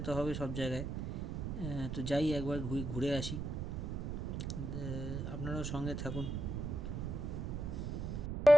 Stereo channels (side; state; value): right; noise; rumble, 3 dB below the sound